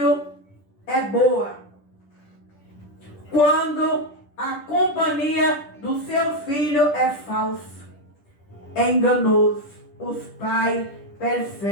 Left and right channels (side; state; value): right; late; 10 ms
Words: é boa. Quando a companhia do seu filho é falsa, é enganoso. Os pais